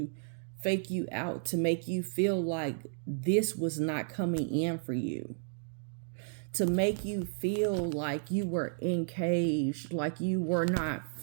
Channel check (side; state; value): left; silent; digital silence